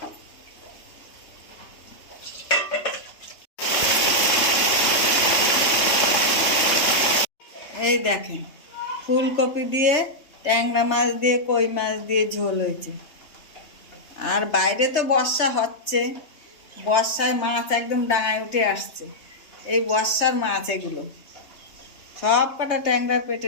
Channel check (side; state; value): right; late; 3.2 ms